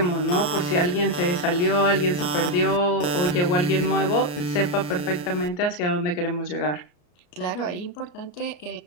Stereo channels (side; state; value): right; late; 34 ms